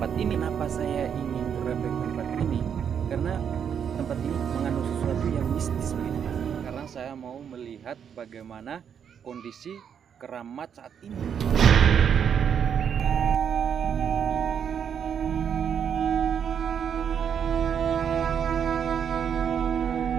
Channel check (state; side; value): quieter; left; 7.9 dB